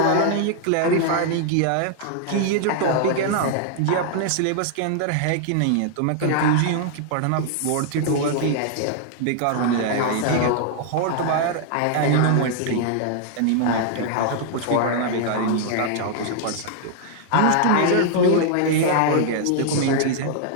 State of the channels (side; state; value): both; different; correlation 0.00